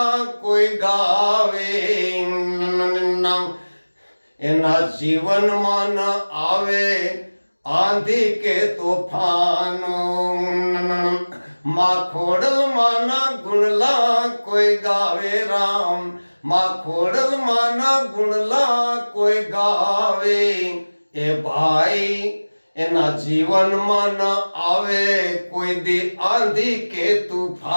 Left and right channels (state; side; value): inverted; both; correlation -1.00